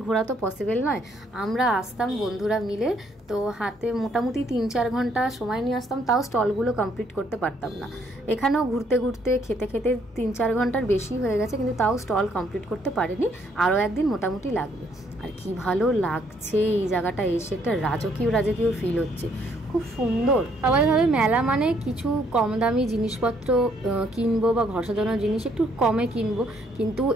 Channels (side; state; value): both; normal; correlation 0.68